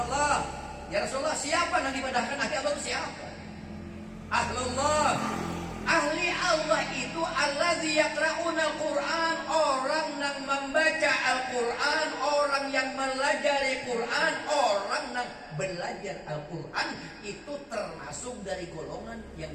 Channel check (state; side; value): identical; both; correlation 1.00